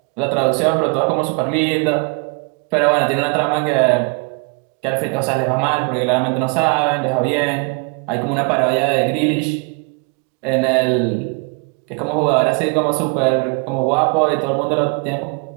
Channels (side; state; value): left; quieter; 35.1 dB